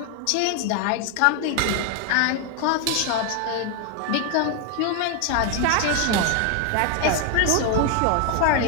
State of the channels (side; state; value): both; different; correlation 0.01